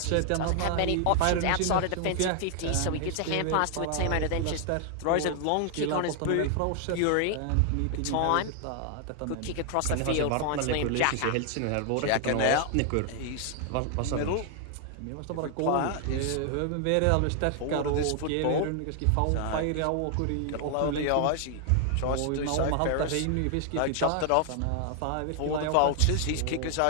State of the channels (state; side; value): different; both; correlation 0.00